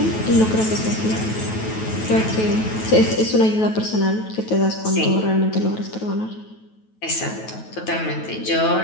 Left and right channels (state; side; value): late; right; 9.2 ms